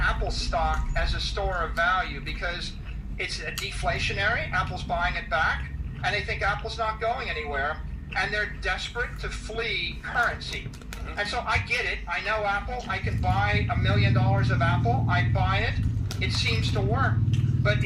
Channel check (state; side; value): identical; both; correlation 1.00